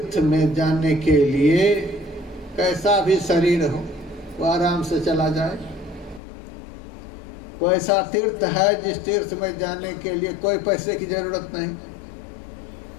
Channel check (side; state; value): right; drops out; at 6.2 s